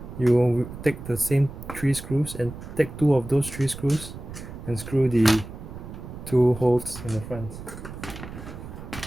you will take the same 3 screws and take 2 of those 3 screws and screw the 2 holes in the front.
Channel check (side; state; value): right; noise; rumble, 12 dB below the sound